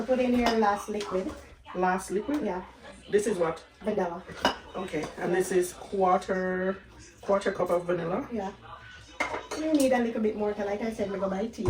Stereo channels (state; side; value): identical; both; correlation 1.00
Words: put in your last liquid. last liquid. Yeah. This is what? Vanilla. Okay. And this is quarter cup of vanilla. Yeah. You need a little bit more, 'cause like I said, we go by